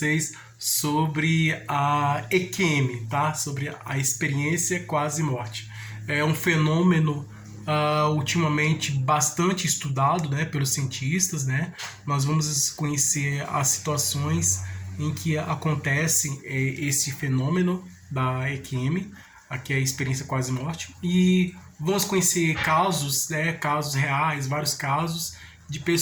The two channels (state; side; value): identical; both; correlation 1.00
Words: sobre a EQM, tá? Sobre a experiência quase morte. É um fenômeno ultimamente bastante estudado, né, pelos cientistas, né? Nós vamos conhecer as situações em que acontece esse fenômeno da EQM, aqui é a experiência quase morte, e vamos conhecer casos, né, casos reais, vários casos de